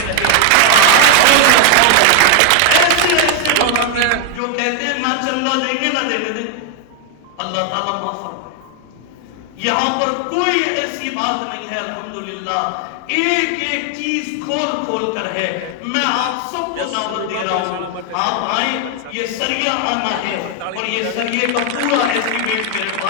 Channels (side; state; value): both; different; correlation 0.00